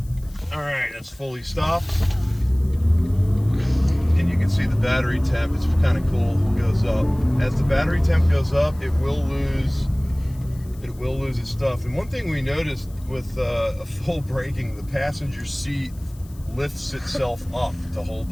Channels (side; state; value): left; noise; hiss, 25 dB below the sound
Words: all right, that's fully stopped, and you can see the battery temp. It's kind of cool. It goes up as the battery temp goes up. It will lose its stuff. And one thing we noticed with a full braking, the passenger seat lifts itself up to hold